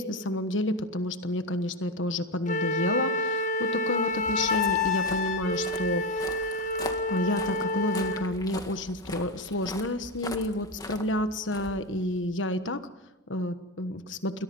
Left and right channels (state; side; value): normal; both; correlation 0.14